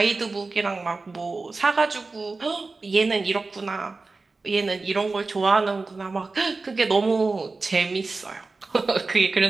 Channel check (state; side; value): quieter; left; 3.7 dB